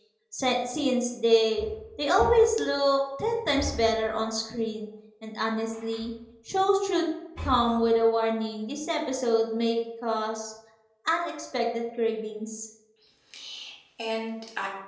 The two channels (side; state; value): both; identical; correlation 1.00